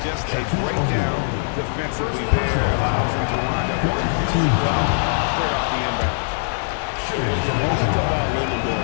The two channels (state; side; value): silent; right; 65 dB below the other